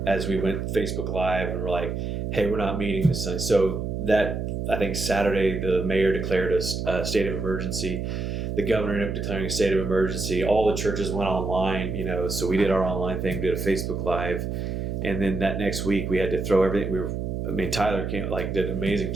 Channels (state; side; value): noise; right; hum, 3 dB below the sound